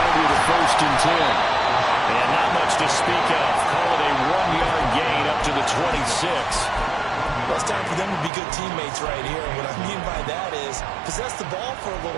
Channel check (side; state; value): left; drops out; at 8.3 s